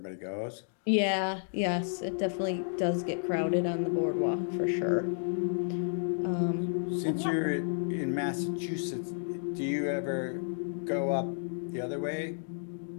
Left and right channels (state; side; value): silent; right; digital silence